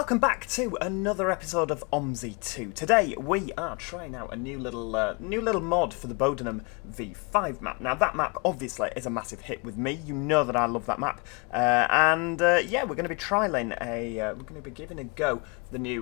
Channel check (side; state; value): right; quieter; 31.6 dB